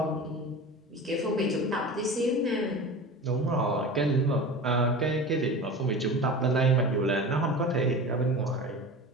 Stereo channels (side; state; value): both; normal; correlation 0.33